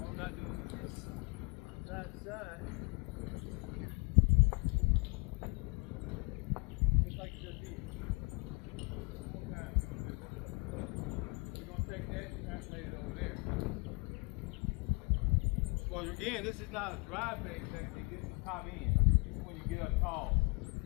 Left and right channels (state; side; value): quieter; right; 29.3 dB